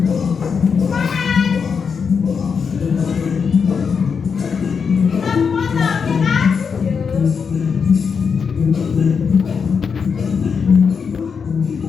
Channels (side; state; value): right; quieter; 6.0 dB